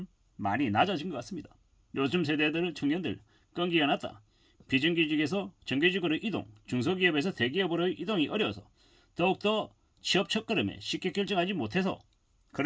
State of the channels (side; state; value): both; identical; correlation 1.00